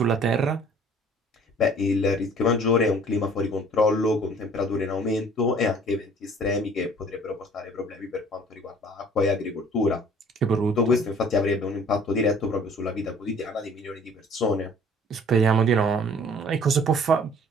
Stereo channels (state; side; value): normal; both; correlation 0.53